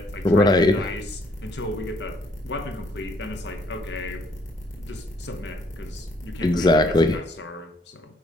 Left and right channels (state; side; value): normal; both; correlation 0.66